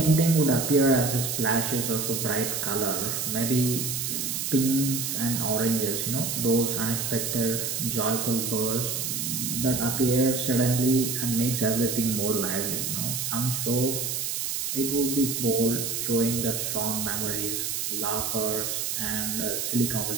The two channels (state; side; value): noise; right; hiss, 2 dB below the sound